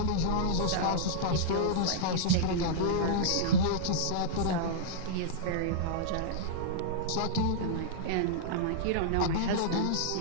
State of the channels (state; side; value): different; both; correlation -0.02